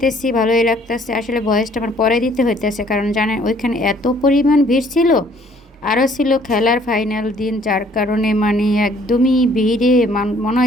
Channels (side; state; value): both; normal; correlation 0.60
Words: ভালোই লাগতেছে। আসলে ভয়েসটা আমার পরে দিতে হইতেছে, কারণ জানেন ওইখানে এত পরিমাণ ভিড় ছিল। আরও ছিল খেলার ফাইনাল দিন, যার কারণে মানে একদমই ভিড়ে মনে